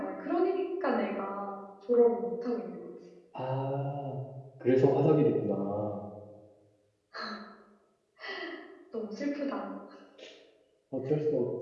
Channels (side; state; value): both; identical; correlation 1.00